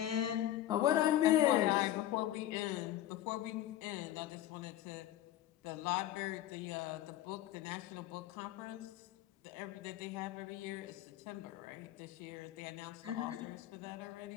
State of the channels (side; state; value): right; quieter; 13.4 dB